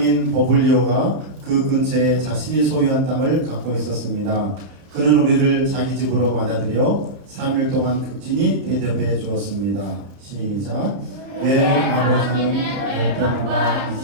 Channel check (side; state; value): left; late; 31 ms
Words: 버블리오가 그 근처에 자신이 소유한 땅을 갖고 있었습니다. 그는 우리를 자기 집으로 맞아들여 3일 동안 극진히 대접해 주었습니다. 시작! 내 아버지는 열병과